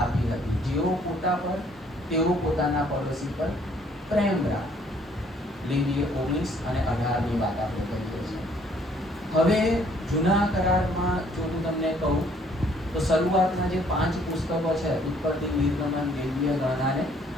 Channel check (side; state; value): both; normal; correlation 0.62